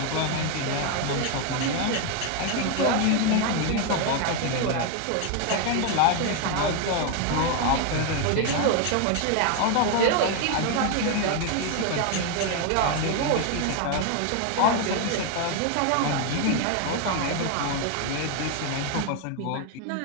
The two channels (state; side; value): different; both; correlation 0.01